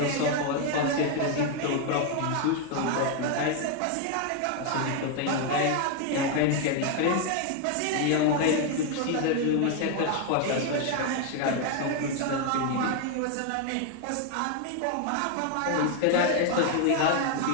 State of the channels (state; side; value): different; both; correlation 0.01